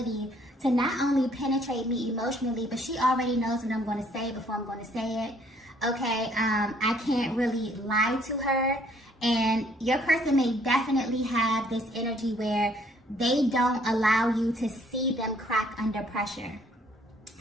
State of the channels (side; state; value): both; normal; correlation 0.63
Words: to not only penetrate me emotionally, but she already knows what I'm going to say before I'm going to say it. Okay, I can't really lie to her. And your person may definitely have this energy where they don't allow you to see them crack under pressure.